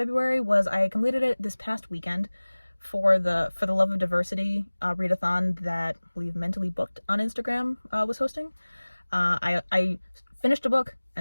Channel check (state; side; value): inverted; both; correlation -1.00